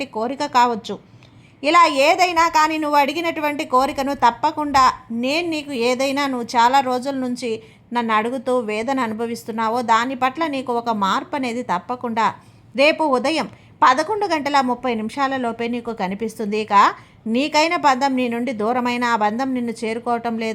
కోరిక కావచ్చు. ఇలా ఏదైనా కానీ నువ్వు అడిగినటువంటి కోరికను తప్పకుండా నేను నీకు ఏదైనా నువ్వు చాలా రోజుల నుంచి నన్ను అడుగుతూ వేదన అనుభవిస్తున్నావో దాని పట్ల నీకు ఒక మార్పు అనేది తప్పకుండా రేపు ఉదయం 11:30 నీకు కనిపిస్తుంది. ఇక నీకైన బంధం నీ నుండి దూరమైన ఆ బంధం నిన్ను చేరుకోవటం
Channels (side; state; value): both; identical; correlation 1.00